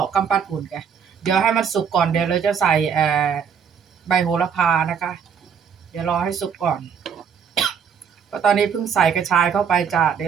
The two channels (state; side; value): quieter; left; 7.1 dB